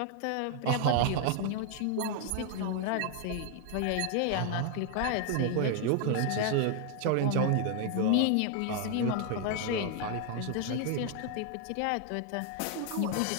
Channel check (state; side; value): different; both; correlation 0.00